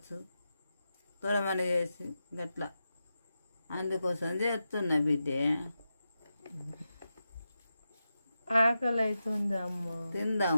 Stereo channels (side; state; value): both; inverted; correlation -0.89